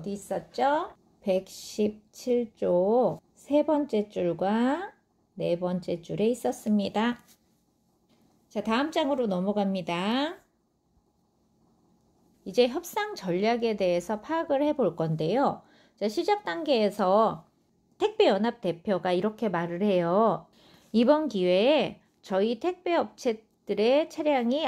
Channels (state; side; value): identical; both; correlation 1.00